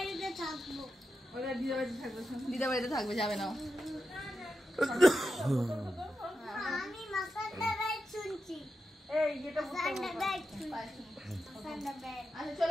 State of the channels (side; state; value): both; normal; correlation 0.89